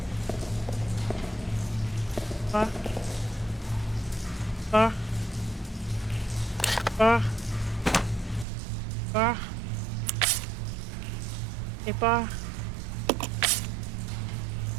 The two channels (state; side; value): drops out; left; at 8.5 s